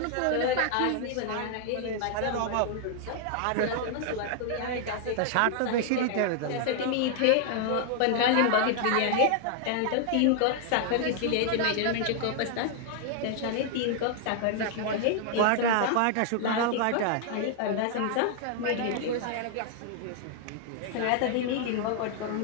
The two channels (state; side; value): different; both; correlation 0.00